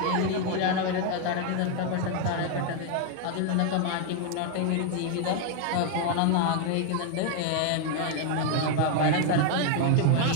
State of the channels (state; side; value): different; both; correlation 0.01